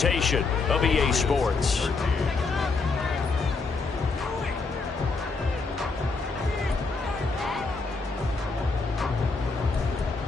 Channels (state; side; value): quieter; right; 4.2 dB